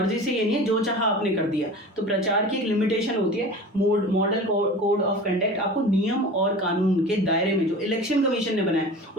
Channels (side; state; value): both; normal; correlation 0.36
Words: से ये नहीं है जो चाहा आपने कर दिया. तो प्रचार की एक लिमिटेशन होती है. मॉडल कोड ऑफ कंडक्ट आपको नियम और कानून के दायरे में जो इलेक्शन कमीशन ने बनाया